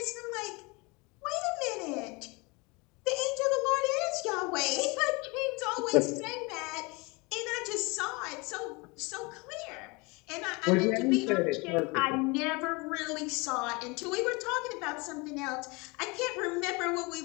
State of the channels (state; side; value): quieter; right; 27.2 dB